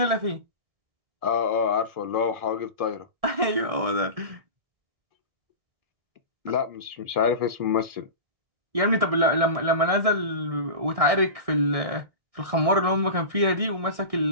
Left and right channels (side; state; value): left; late; 1.6 ms